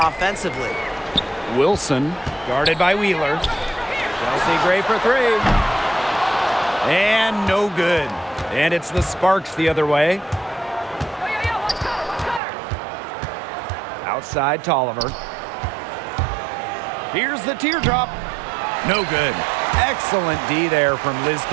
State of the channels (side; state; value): left; drops out; at 12.4 s